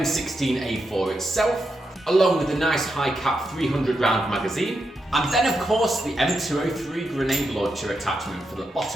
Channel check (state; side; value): normal; both; correlation 0.85